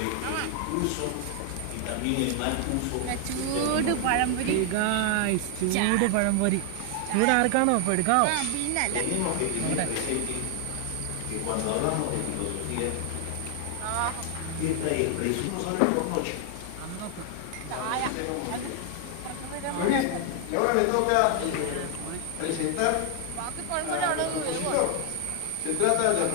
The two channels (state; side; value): different; both; correlation 0.00